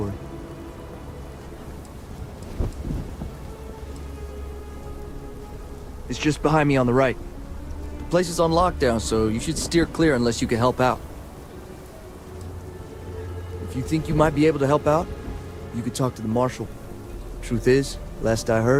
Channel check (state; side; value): identical; both; correlation 1.00